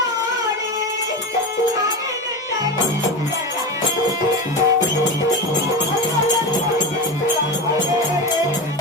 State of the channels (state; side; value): normal; both; correlation 0.22